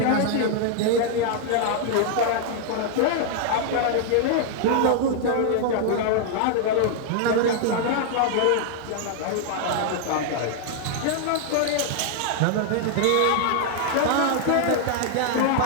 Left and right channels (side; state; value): both; different; correlation 0.00